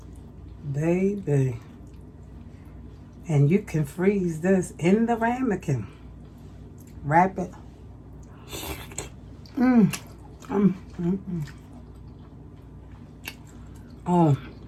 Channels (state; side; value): identical; both; correlation 1.00